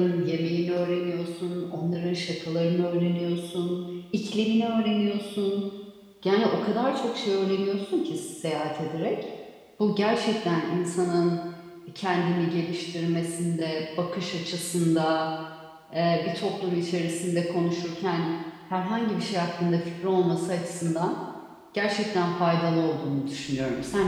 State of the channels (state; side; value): identical; both; correlation 1.00